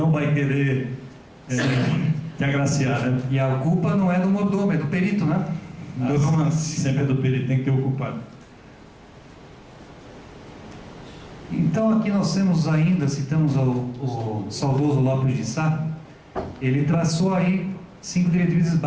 te agraciar, né? E a culpa não é do mordomo, é do perito, né? Do romance. Sempre é do perito, tem que ter o culpado. Então aqui nós temos ainda, citamos o saudoso Lopes de Sá, ele traçou aí 5 diretrizes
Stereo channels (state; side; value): identical; both; correlation 1.00